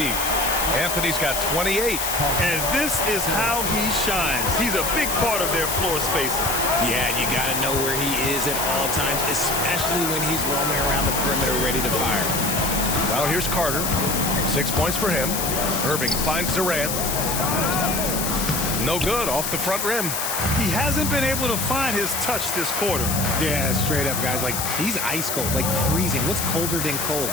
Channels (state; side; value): noise; left; hiss, 2 dB below the sound